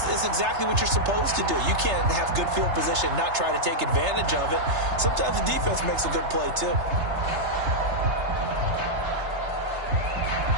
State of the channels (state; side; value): late; left; 3.3 ms